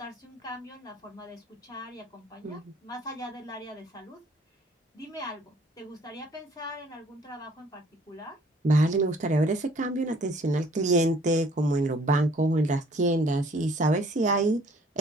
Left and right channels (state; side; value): normal; both; correlation 0.57